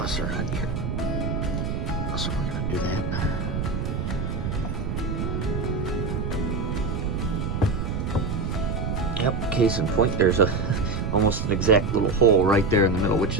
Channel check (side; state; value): right; noise; rumble, 2 dB below the sound